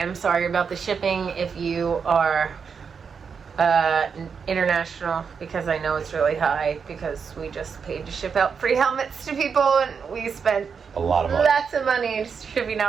sorry about the shipping if you are international, because I know it's really high, because we just paid to ship out free helmets to people, and we spent A lot of money. lots of money shipping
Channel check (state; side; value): quieter; left; 6.1 dB